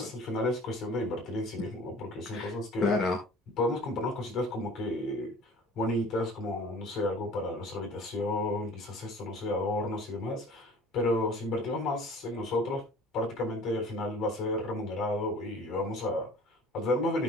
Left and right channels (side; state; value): both; normal; correlation 0.46